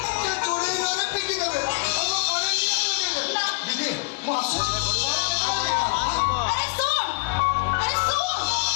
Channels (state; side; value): quieter; right; 32.6 dB